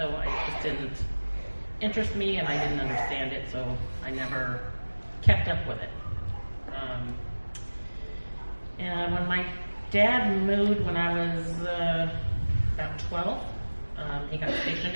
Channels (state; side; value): inverted; both; correlation -1.00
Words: it just didn't interest me, and I didn't understand it, so I never kept up with it. And when my dad moved when I was about 12, he got stationed